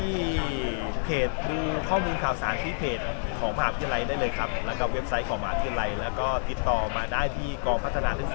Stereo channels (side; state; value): right; silent; 59 dB below the other